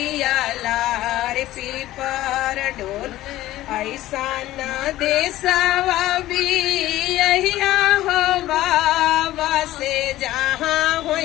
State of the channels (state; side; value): quieter; right; 15.4 dB